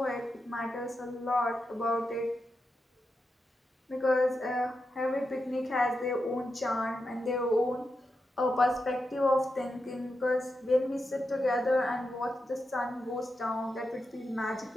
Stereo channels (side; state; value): both; normal; correlation 0.87